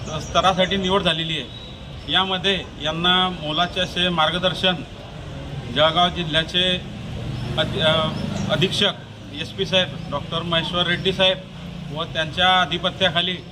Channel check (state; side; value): identical; both; correlation 1.00